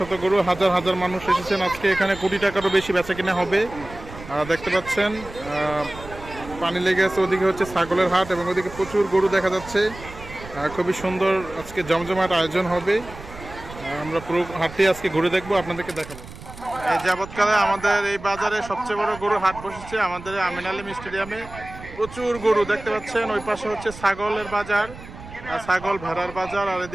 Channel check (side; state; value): right; noise; rumble, 15 dB below the sound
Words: গরু, হাজার হাজার মানুষ এসেছেন আজকে। এখানে কোটি টাকারও বেশি বেচা কিনা হবে। দেখতে পাচ্ছেন পানি লেগে আছে, ওদিকে হচ্ছে ছাগলের হাট এবং ওদিকে প্রচুর গরু দেখা যাচ্ছে। খুবই সুন্দর আজকে জমজমাট আয়োজন হবে। আমরা পুরো হাটটি আজকে ঘুরে দেখবো, আপনাদেরকে দেখাবো। এই যাবৎকালে আমাদের এই বাজারে সবচেয়ে বড় গরু হাট বসেছে আমাদের আমিন আলী স্টেডিয়ামে। প্রচুর গরু দেখতে পাচ্ছেন। ওই পাশে হচ্ছে ছাগলের বাজার, ছাগল ভেড়ার বাজার, আর